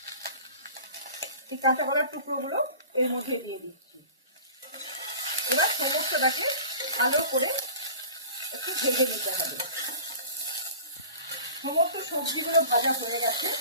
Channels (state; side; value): inverted; both; correlation -0.41